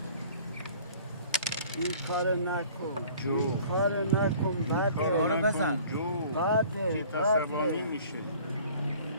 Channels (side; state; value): both; inverted; correlation -0.50